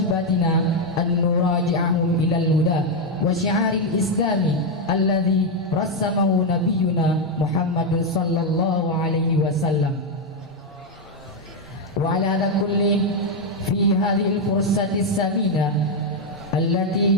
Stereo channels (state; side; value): normal; both; correlation 0.02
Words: an nuraji'ahum ila al-huda wa syi'aril islami alladhi rassamahu nabiyyuna Muhammadun sallallahu alaihi wasallam. Wa ala hadha kulli fi hadhihi al-fursati as-samina allati